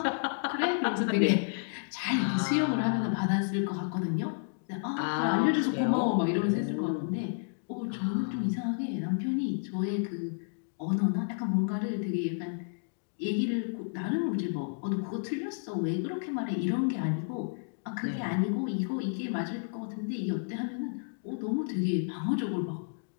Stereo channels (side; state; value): right; silent; digital silence